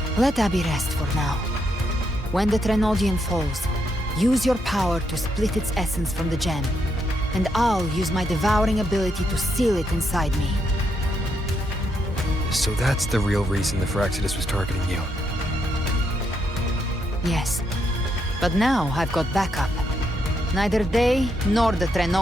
Let Abby rest for now. When the Threnodian falls, use your power to split its essence from the gem, and I'll use my devouring ability to seal it inside me. So that's the real reason the Phyrexidas was targeting you. Yes, but now I've got backup. Neither they nor the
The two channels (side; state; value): both; normal; correlation 0.78